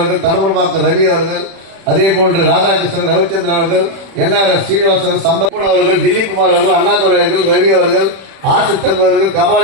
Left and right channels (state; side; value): late; left; 36 ms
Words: அவர்கள், தடமரமாக்க ரவி அவர்கள், அதே போன்று ராதாகிருஷ்ணன், ரவிச்சந்திரன் அவர்கள், என்ஆர் சீனிவாசன், சம்பன் அவர்கள், தில்லிகுமார் அவர்கள், அண்ணாதுரை அவர்கள், ரவி அவர்கள், ஆசித்தம் அவர்கள்,